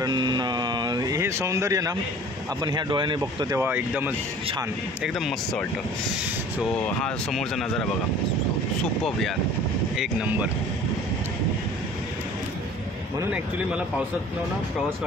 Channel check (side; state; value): both; normal; correlation 0.47